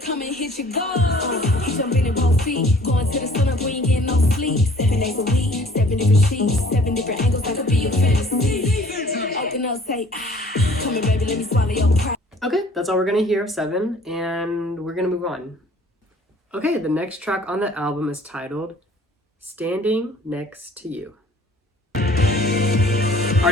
come and hit your goal. He jumping in both feet, going to the sun up, we ain't getting no sleep. 7 days a week, 7 different sheets, 7 different angles, that could be your fantasy. Open up, say, come here, baby, let me swallow your pride. Okay, that's all we're gonna hear of 7, and we're gonna move on. Okay, the next track on the album is titled Standing Next to You.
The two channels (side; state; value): both; normal; correlation 0.53